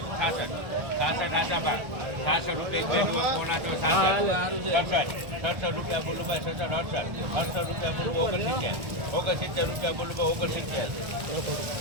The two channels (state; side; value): late; left; 1.4 ms